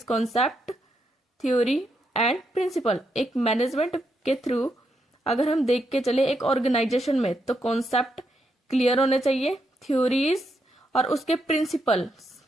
concept, theory and principle. एक मैनेजमेंट के थ्रू अगर हम देख के चले एक ऑर्गेनाइजेशन में, तो कॉन्सेप्ट क्लियर होने चाहिए, थ्योरीज और उसके प्रिंसिपल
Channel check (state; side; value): normal; both; correlation 0.80